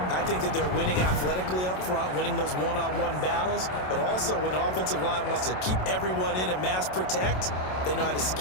I think that they're winning athletically up front, winning those one-on-one battles, but also when the offensive line wants to keep everyone in and mass protect, they know how to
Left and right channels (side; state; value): right; late; 27 ms